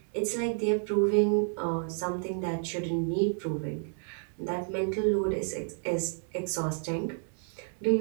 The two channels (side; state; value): left; silent; 57 dB below the other